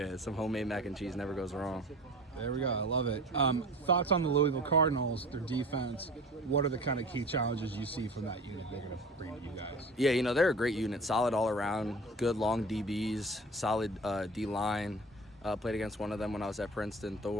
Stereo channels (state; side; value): normal; both; correlation 0.38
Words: Some homemade mac and cheese never goes wrong. There we go. I love it. Thoughts on the Louisville Cardinals, their defense? What are the kind of key challenges you see from that unit they're going to bring to you guys? Yeah, they're a great unit. Solid all around. Good long DBs. Solid D-line. Played against one of them when I was at Princeton,